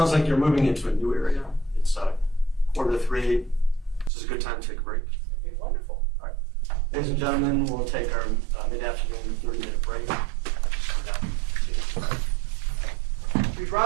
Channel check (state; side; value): drops out; left; at 4.1 s